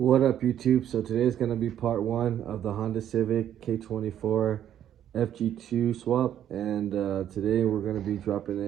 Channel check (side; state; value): left; quieter; 10.6 dB